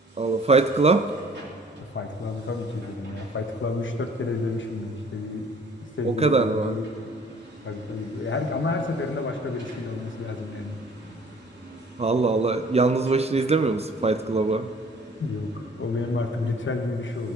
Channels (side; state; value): both; normal; correlation 0.54